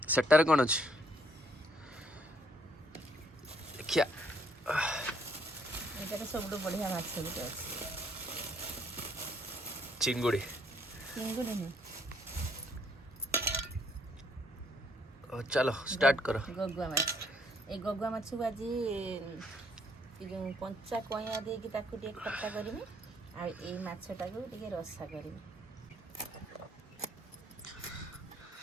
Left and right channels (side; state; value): both; normal; correlation 0.67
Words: सेटार कौन अच्छी देखिया एटा सबटु बढ़िया माछ गुटे अछि चिंगुड़ी चिंगुड़ी नहीं चलो स्टार्ट करो गगुआ माछ ए गगुआ माछ को आज जो कंचा कइया दे कि ताकू टे खट्टा करबी आ ए माछटा को टे रसा करबी